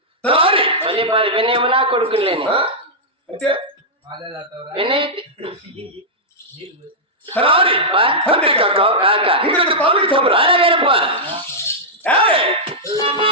వినేమో నా కొడుకులేని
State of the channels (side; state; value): both; normal; correlation -0.10